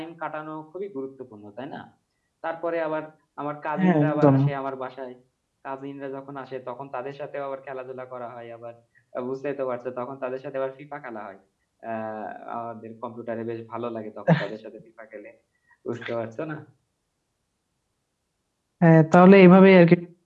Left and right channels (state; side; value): identical; both; correlation 1.00